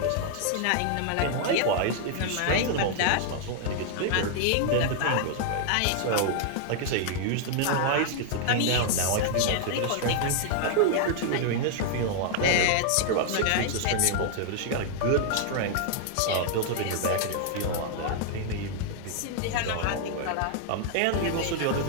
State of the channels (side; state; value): both; different; correlation 0.00